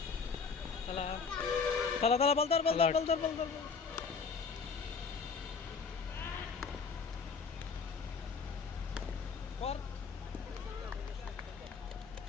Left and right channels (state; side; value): quieter; right; 5.3 dB